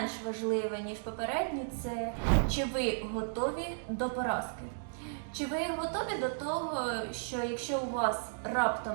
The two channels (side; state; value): left; silent; digital silence